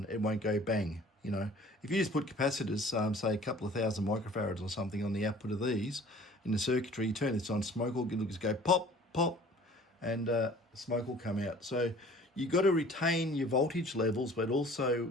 it won't go bang. If you just put capacitors, say a couple of thousand microfarads or something on the output of these in the circuitry, you turn this on, smoke will just go pop, pop, and smoke will come out. So you've got to retain your voltage levels, but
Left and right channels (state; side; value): normal; both; correlation 0.49